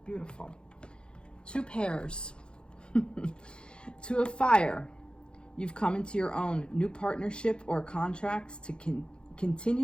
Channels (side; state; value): right; late; 0.052 ms